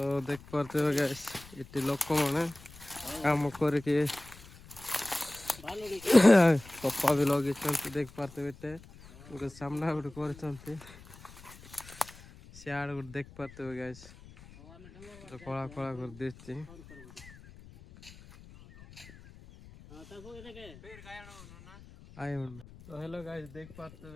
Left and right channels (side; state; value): left; noise; rumble, 19 dB below the sound